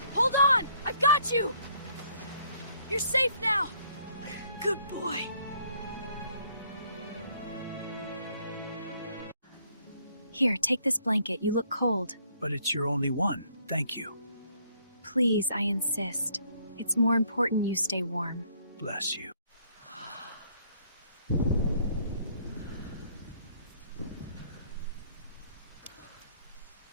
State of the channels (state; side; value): inverted; both; correlation -0.65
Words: Hold on! I've got you! You're safe now! Good boy. Here, take this blanket. You look cold. But it's your only one. Thank you. Please, I insist. It's more important you stay warm. Bless you.